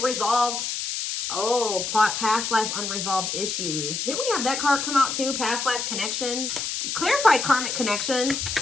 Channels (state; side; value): noise; left; hiss, 3 dB below the sound